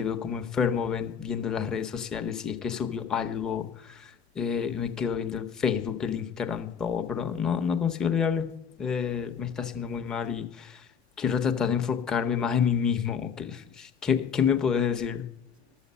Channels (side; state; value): right; quieter; 7.0 dB